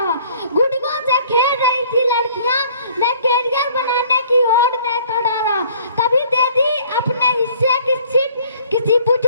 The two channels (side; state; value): both; inverted; correlation -0.56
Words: गुड्डियों से खेल रही थी लड़कियां, मैं कैरियर बनाने की होड़ में खड़ा रहा। कभी दे दी अपने हिस्से की सीट किसी